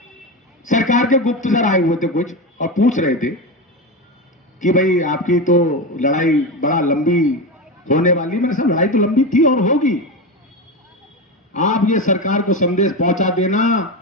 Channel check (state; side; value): normal; both; correlation 0.18